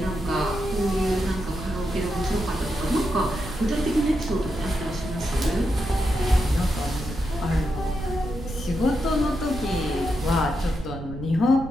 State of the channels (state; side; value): noise; right; rumble, 9 dB below the sound